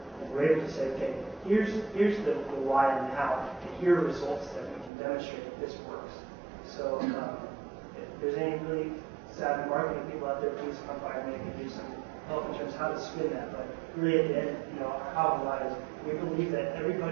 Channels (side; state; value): left; drops out; at 4.9 s